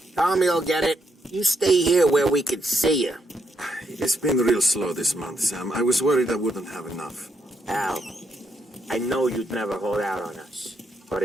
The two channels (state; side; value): normal; both; correlation 0.78